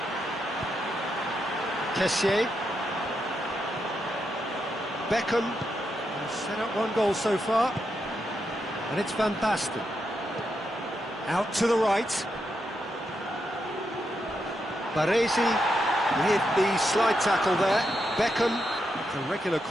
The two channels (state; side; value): normal; both; correlation 0.83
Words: Kessié. Beckham has set up 1 goal so far, and it's Van Basten. Out to the right. Baresi with the slide tackle there. Beckham, the regular